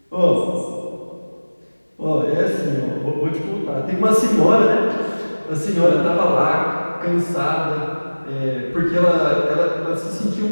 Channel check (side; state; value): both; inverted; correlation -1.00